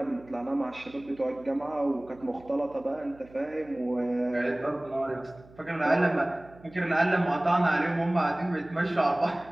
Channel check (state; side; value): noise; right; hum, 23 dB below the sound